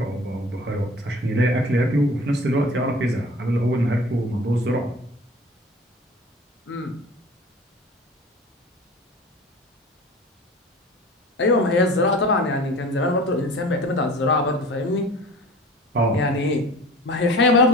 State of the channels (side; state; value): both; normal; correlation 0.41